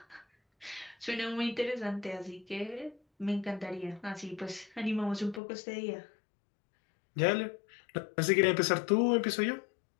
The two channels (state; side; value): drops out; right; at 5.4 s